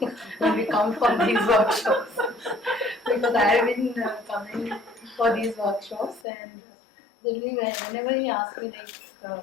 when we come for these workshops. Because I have been coming for these workshops, and generally whenever he asks me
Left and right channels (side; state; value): right; drops out; at 6.2 s